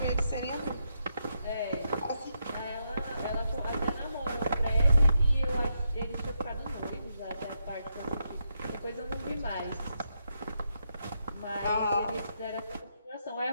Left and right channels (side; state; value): both; inverted; correlation -0.82